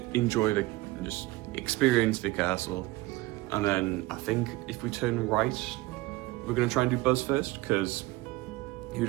experience the castle, and then I think if we turn right, we're gonna try and do Buzz first, because who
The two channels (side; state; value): left; quieter; 20.0 dB